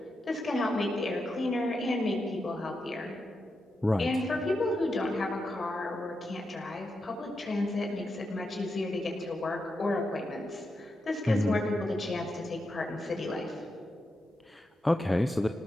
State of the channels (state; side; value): normal; both; correlation 0.86